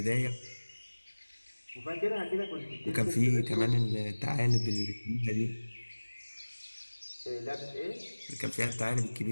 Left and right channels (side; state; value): both; inverted; correlation -1.00